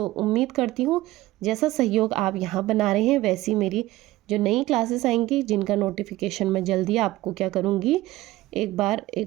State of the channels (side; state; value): left; quieter; 17.2 dB